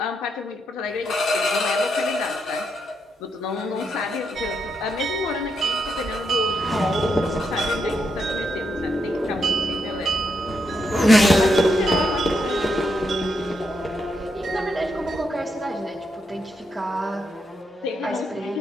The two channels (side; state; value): both; normal; correlation 0.81